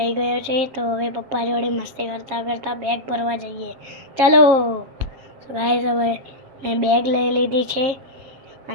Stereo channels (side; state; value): left; late; 7.4 ms